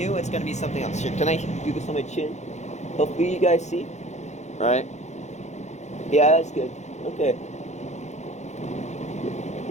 it's gonna be something else. Here, can I do this on my chin? Hopefully you guys see. All right. Yeah, that's good. Okay.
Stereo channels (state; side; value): late; right; 0.33 ms